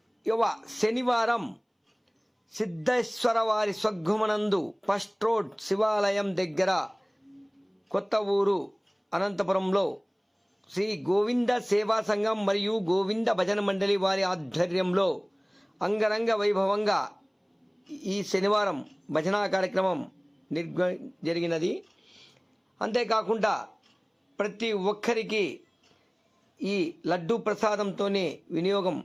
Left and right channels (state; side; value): identical; both; correlation 1.00